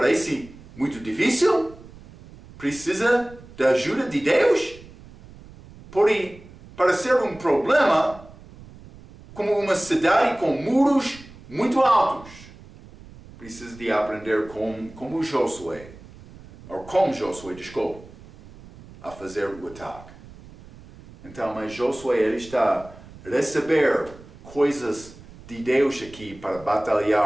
muito difícil? Precisa da ajuda de Deus? Pode parecer um problema como uma cidade com muros muito altos. Precisa de aprender como Josué, desculpe, a fazer o ataque. Então, mas Josué, ele está a receber coisas de Deus aqui para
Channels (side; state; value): right; noise; rumble, 20 dB below the sound